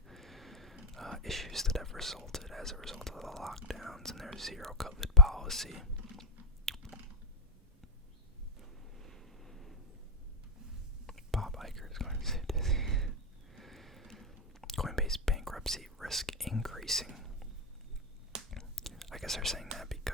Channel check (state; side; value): normal; both; correlation 0.04